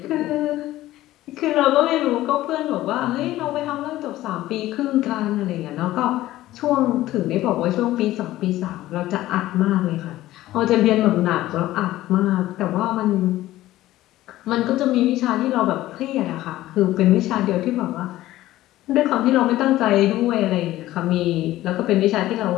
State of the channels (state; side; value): quieter; right; 15.5 dB